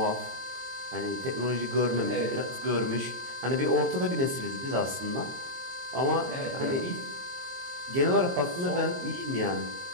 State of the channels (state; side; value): late; left; 22 ms